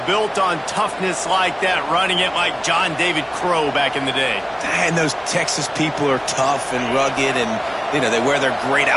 built on toughness like that, running it like John David Crow back in the day. And those Texas people are tough and rugged, and you know they wear their great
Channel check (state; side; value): identical; both; correlation 1.00